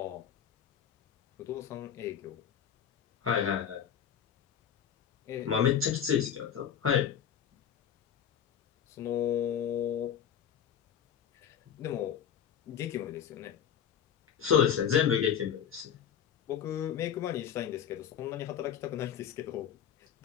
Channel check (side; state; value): right; quieter; 8.8 dB